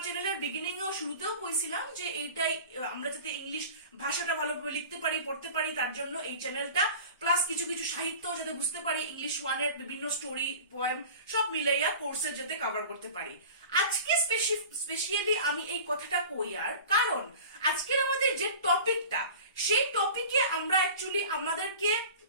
চ্যানেলের বিগিনিং এও শুরুতেও কইছিলাম যে এইটাই, আমরা যাতে ইংলিশ ভাষাটা ভালোভাবে লিখতে পারি, পড়তে পারি, তার জন্য এই চ্যানেলটা, প্লাস কিছু কিছু সাহিত্য যাতে বুঝতে পারি, ইংলিশ 1 এর বিভিন্ন স্টোরি, পোয়েম সব মিলাইয়া কোর্সে যাতে কভার করতে পারি। আজকে স্পেশালি আমি এই কথাটা কই, আর কারণ আজকের আমাদের যে টপিকটা, সেই টপিকে আমরা অ্যাকচুয়ালি আমাদেরকে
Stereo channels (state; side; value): inverted; both; correlation -0.38